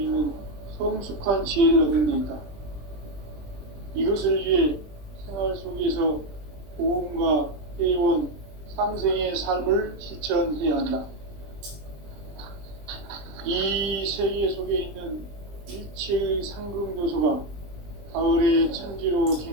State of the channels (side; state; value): left; late; 20 ms